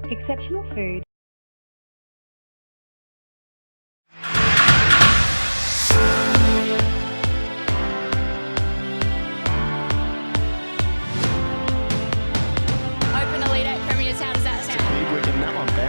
Exceptional food. Open a lead at Premier's. How does that sound? Big wicket, that one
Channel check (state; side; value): inverted; both; correlation -1.00